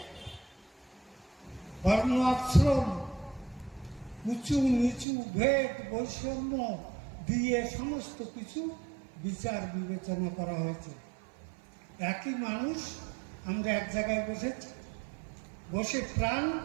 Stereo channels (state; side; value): drops out; left; at 5.1 s